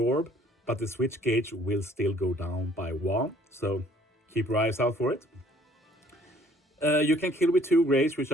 but the switch gauge will still go down by 1. So keep your eyes out for it. You can kill with 2 grades, which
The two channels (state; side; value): normal; both; correlation 0.59